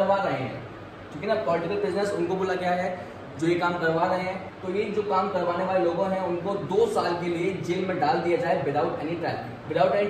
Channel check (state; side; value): identical; both; correlation 1.00